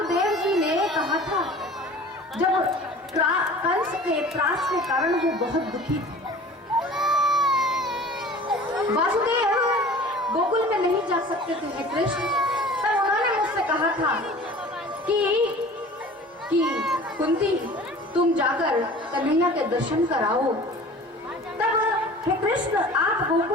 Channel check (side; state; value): both; normal; correlation 0.43